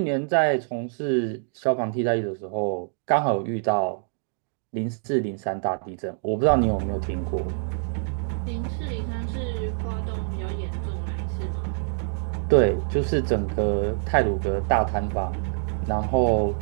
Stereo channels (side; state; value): left; silent; digital silence